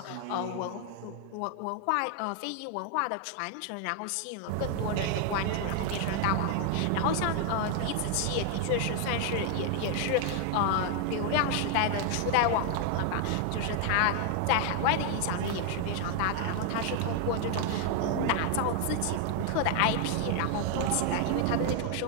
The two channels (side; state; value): both; different; correlation 0.00